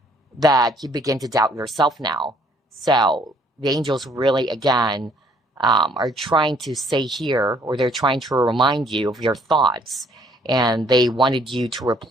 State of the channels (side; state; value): both; normal; correlation 0.63